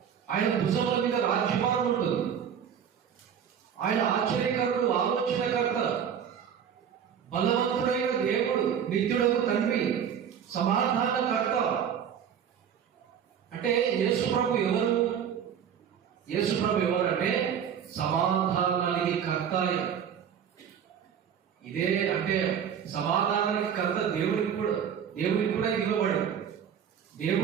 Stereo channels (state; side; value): quieter; left; 8.2 dB